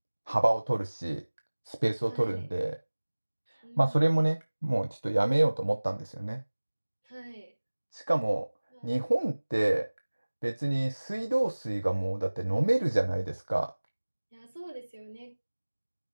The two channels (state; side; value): inverted; both; correlation -1.00